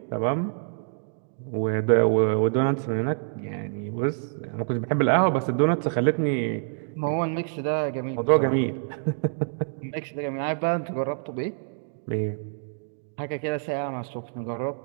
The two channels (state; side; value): silent; left; digital silence